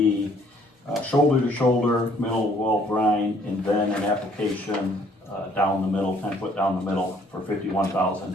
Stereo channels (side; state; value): both; normal; correlation 0.62